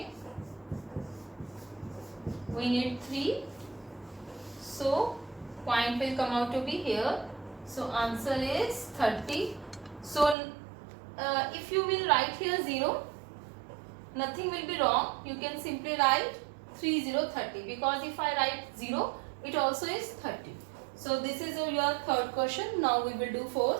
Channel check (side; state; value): left; drops out; at 10.4 s